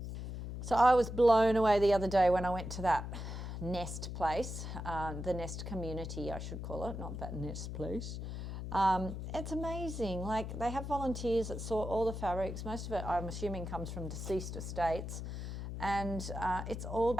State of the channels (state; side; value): noise; left; hum, 6 dB below the sound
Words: So I was blown away the other day when I went to that Nest place, the Nest community, I should call it, not that Nest place. It's amazing. Like, they have volunteers that sort all the fabrics. Most of it, I'm assuming, comes from deceased estates. And it's all